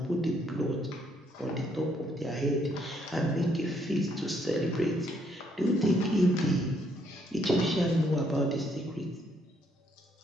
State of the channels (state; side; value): normal; both; correlation 0.71